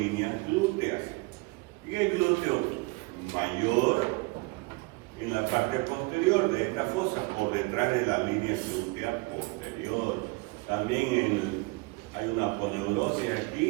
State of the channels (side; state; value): left; quieter; 25.2 dB